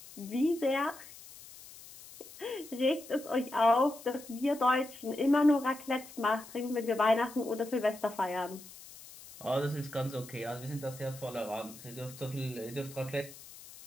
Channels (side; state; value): left; noise; hiss, 17 dB below the sound